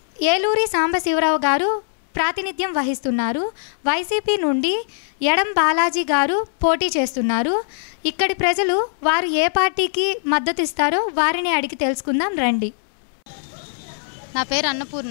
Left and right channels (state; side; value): silent; right; 65 dB below the other